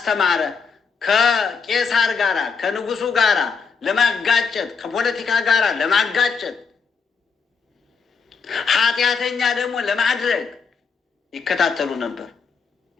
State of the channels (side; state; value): right; quieter; 5.4 dB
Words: ከቄሳር ጋራ ከንጉሱ ጋራ ለማጋጨት፣ ከፖለቲካ ጋራ ለማጋጨት፣ ኃጢአተኛ ደግሞ ለማድረግ ይከታተሉ ነበር፣